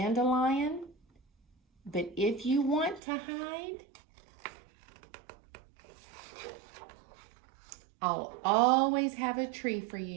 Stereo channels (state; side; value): drops out; left; at 3.0 s